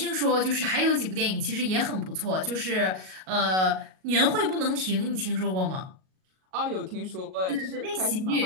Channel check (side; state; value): left; late; 38 ms